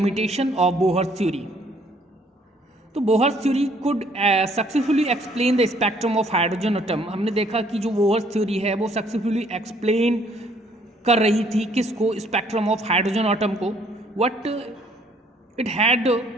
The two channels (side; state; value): both; normal; correlation 0.63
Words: of Bohr's theory. तो Bohr's theory could successfully explain the spectrum of hydrogen atom. हमने देखा कि जो Bohr's theory है वो successfully explain कर रही थी किसको, स्पेक्ट्रम ऑफ हाइड्रोजन एटम को. What it had